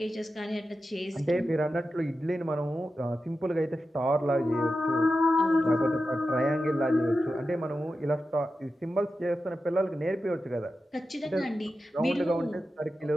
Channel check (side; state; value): both; normal; correlation 0.91